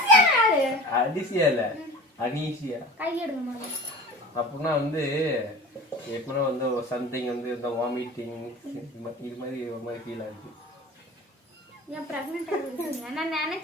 யாரு? அன்சியா இல்ல. அன்ஈசியா. கை எடுங்க முதல்ல. அப்படின்னா வந்து எப்படின்னா வந்து சம்திங் வந்து இந்த வாமிட்டிங் இது மாதிரி ஒரு மாதிரி ஃபீல் ஆகுது. ஏன் பிரெக்னென்ட் ஆகுறீங்க? நான்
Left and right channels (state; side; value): normal; both; correlation 0.38